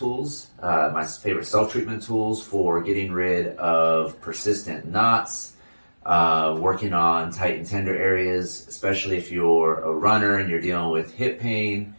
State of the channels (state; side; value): inverted; both; correlation -1.00